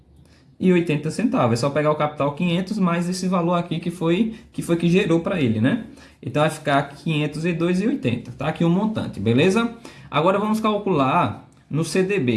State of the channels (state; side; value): identical; both; correlation 1.00